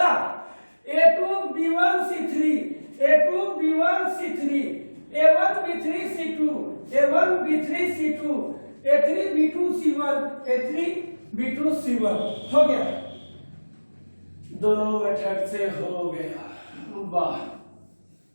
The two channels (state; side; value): inverted; both; correlation -1.00